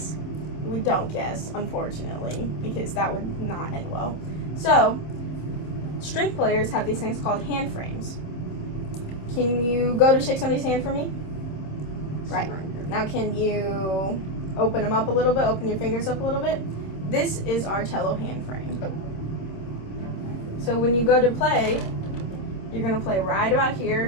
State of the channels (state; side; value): late; right; 26 ms